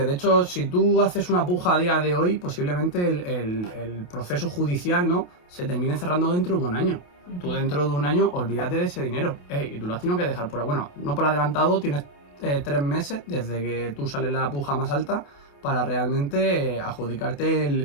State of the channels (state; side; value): late; right; 28 ms